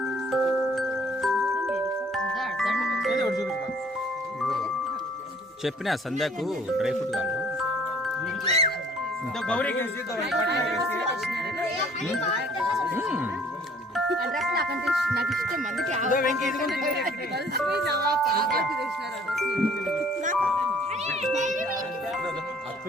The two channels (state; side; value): normal; both; correlation 0.56